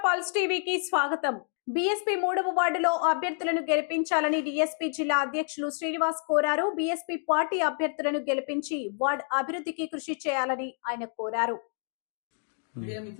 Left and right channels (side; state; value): right; silent; 59 dB below the other